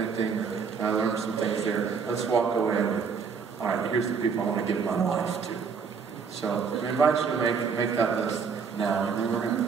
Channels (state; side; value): quieter; left; 5.9 dB